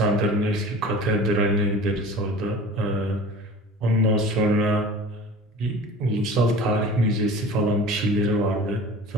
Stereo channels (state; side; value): normal; both; correlation 0.39